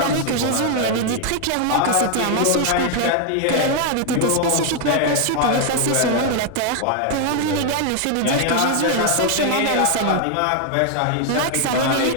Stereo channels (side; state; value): both; different; correlation 0.00